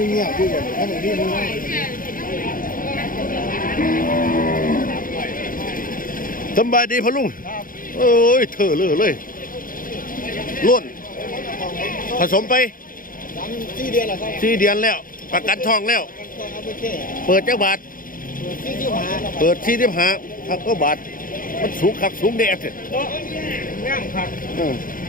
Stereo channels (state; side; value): late; right; 0.40 ms